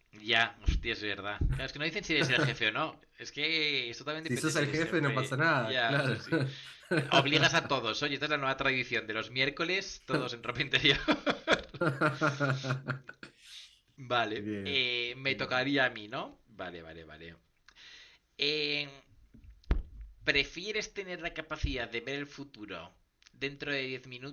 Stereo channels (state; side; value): identical; both; correlation 1.00